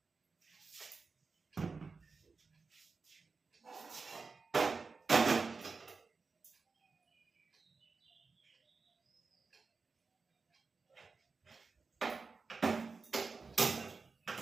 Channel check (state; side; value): quieter; left; 4.4 dB